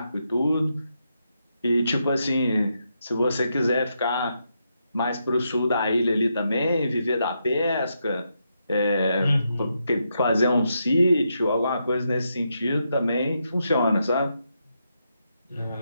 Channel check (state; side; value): inverted; both; correlation -0.82